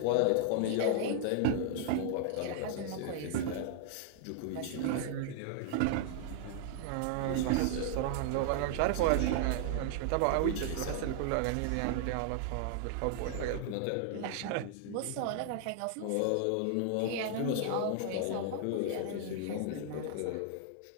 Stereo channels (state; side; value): different; both; correlation 0.00